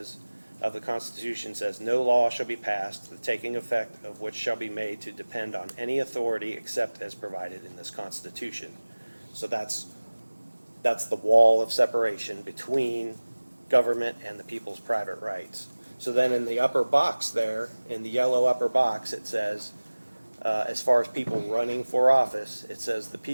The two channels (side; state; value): both; inverted; correlation -1.00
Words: of the Constitution says, no law shall be passed, the taking effect of which shall be made to depend on any authority except as provided in this Constitution. So that's the wall of separation between government and the people's private rights. So then in the upper box there, in the yellow upper box, it says, as far as people running for office, it says the